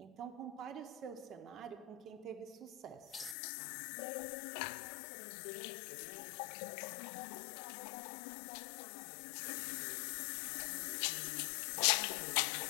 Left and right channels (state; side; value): drops out; right; at 3.4 s